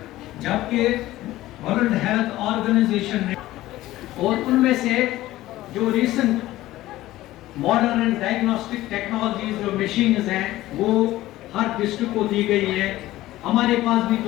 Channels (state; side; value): quieter; right; 16.0 dB